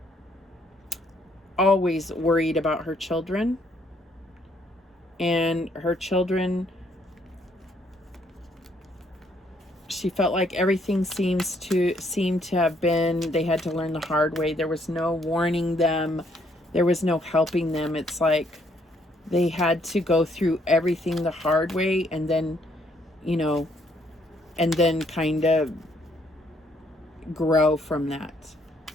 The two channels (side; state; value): both; normal; correlation 0.69